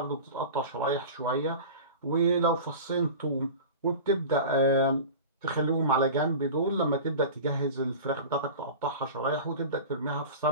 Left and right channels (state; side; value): inverted; both; correlation -0.34